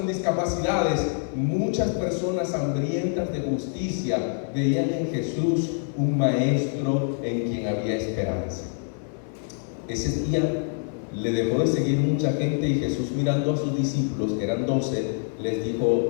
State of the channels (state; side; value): silent; right; 61 dB below the other